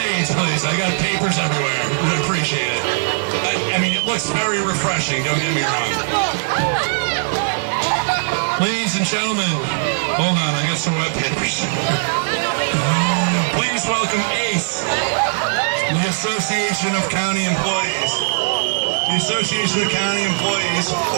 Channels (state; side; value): silent; left; 60 dB below the other